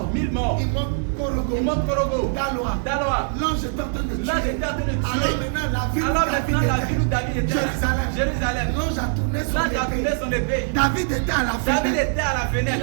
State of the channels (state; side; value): silent; left; digital silence